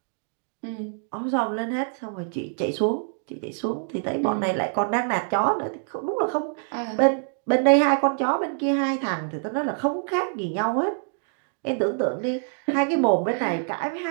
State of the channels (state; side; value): silent; left; 61 dB below the other